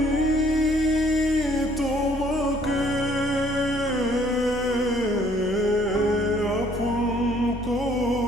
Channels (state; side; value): normal; both; correlation 0.61